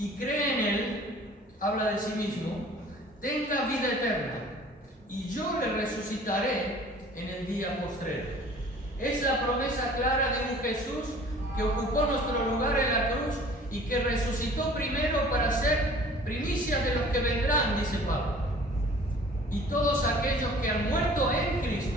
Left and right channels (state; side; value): normal; both; correlation 0.49